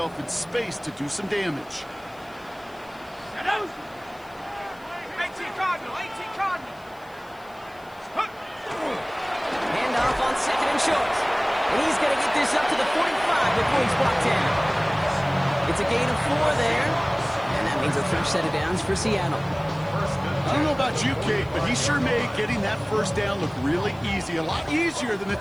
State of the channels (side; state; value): left; noise; hiss, 28 dB below the sound